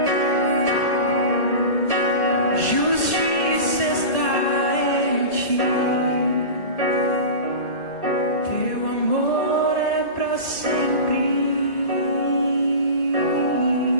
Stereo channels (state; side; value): late; right; 1.8 ms